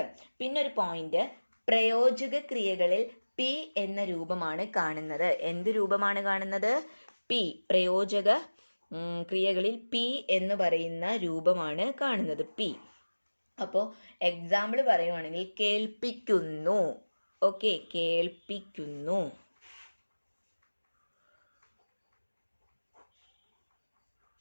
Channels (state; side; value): inverted; both; correlation -1.00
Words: പിന്നെ ഒരു പോയിന്റ്, പ്രയോജക ക്രിയകളിൽ പി എന്ന രൂപമാണ് കാണുന്നത്. എന്ത് രൂപമാണ് കാണുന്നത്? പി. പ്രയോജക ക്രിയകളിൽ പി എന്ന് പറയുന്ന രൂപമാണ് കാണുന്നത്, പി. അപ്പോൾ എക്സാമ്പിൾ പറയുവാണെങ്കിൽ, കേൾപ്പിക്കുന്നു. ഓക്കെ, കേൾപ്പിക്കുന്നു.